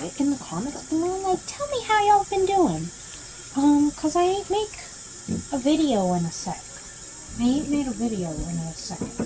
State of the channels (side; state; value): both; identical; correlation 1.00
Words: it in the comments below. Like, tell me how y'all been doing. Cause I ain't make a video in a sec. I ain't made a video in a second